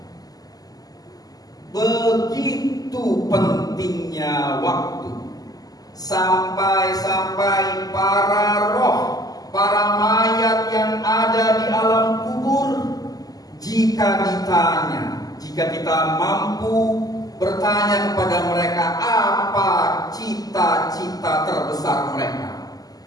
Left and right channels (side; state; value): right; late; 0.18 ms